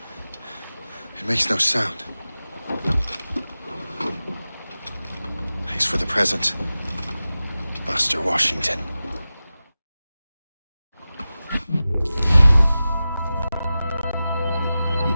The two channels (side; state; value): both; inverted; correlation -0.95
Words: It makes no sound. Thanks for the present, Master Washington.